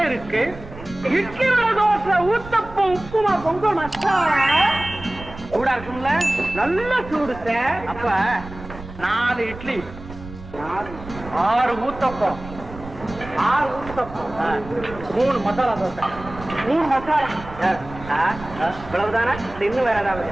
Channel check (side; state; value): right; noise; rumble, 15 dB below the sound